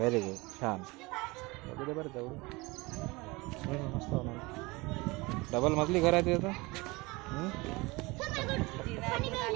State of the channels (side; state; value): left; quieter; 23.7 dB